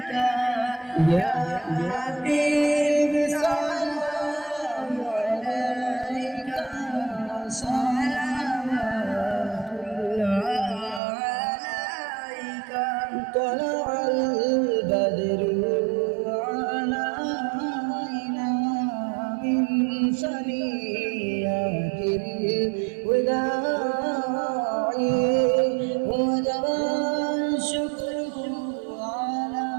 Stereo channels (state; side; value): drops out; left; at 11.0 s